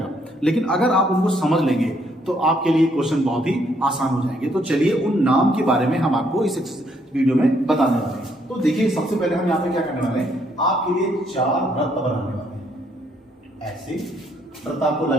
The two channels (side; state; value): both; normal; correlation 0.70